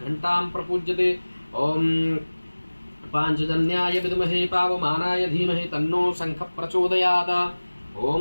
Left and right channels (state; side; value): inverted; both; correlation -1.00